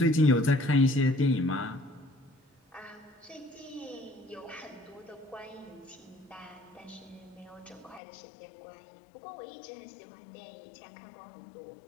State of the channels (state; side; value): drops out; right; at 8.0 s